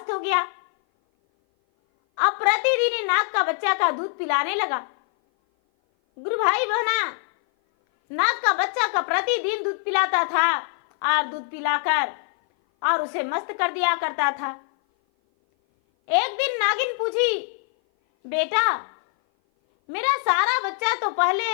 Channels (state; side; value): silent; right; 57 dB below the other